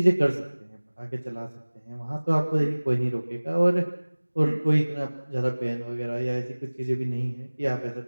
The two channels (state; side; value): inverted; both; correlation -1.00